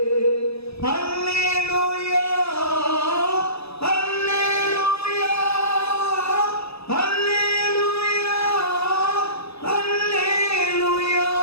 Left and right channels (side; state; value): right; late; 0.79 ms